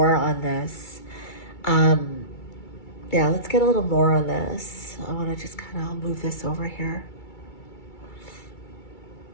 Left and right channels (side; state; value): right; late; 2.3 ms